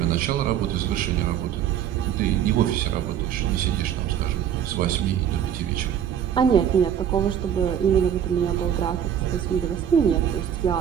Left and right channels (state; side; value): quieter; left; 9.4 dB